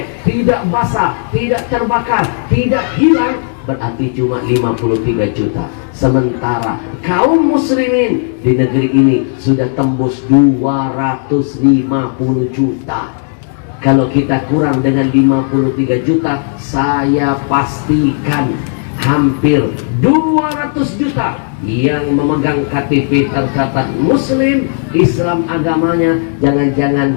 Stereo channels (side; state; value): right; silent; 61 dB below the other